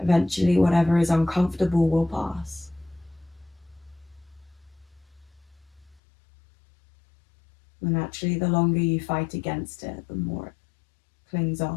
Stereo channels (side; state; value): right; drops out; at 6.0 s